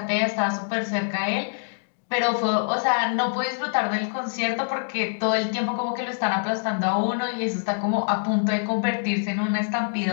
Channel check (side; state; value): right; silent; digital silence